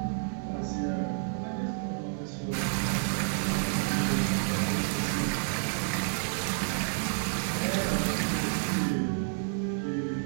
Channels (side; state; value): left; silent; digital silence